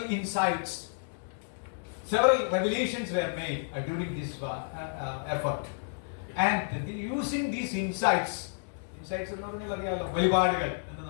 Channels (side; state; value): right; silent; digital silence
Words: insights. Several revelations were made during this effort. And using these insights എന്ന് പറഞ്ഞാൽ അറിയാമല്ലോ, വെളിപാടുകൾ എന്ന്